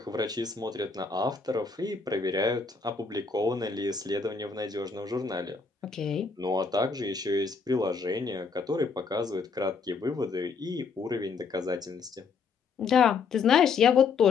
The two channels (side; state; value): right; quieter; 5.1 dB